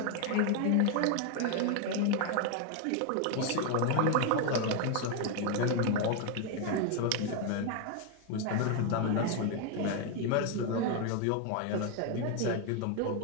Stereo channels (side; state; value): both; different; correlation 0.01